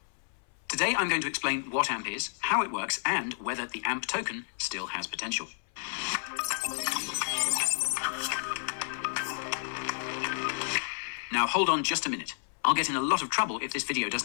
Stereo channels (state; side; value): silent; right; 57 dB below the other